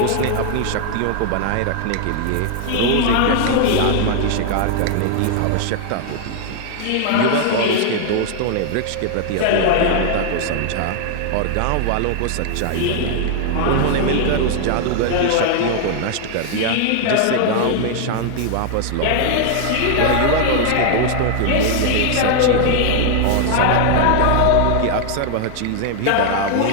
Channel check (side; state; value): both; different; correlation 0.00